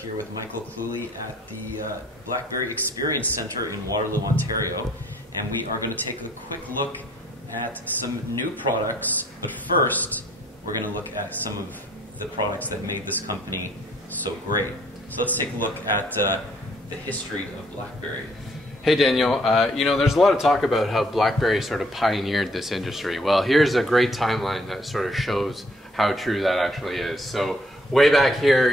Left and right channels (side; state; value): both; normal; correlation 0.62